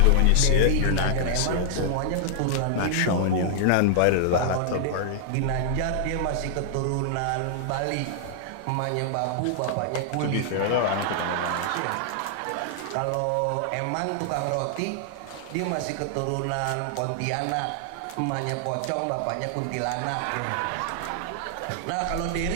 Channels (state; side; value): different; both; correlation -0.01